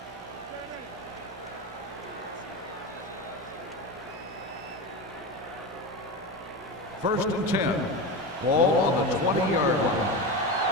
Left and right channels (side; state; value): both; normal; correlation 0.21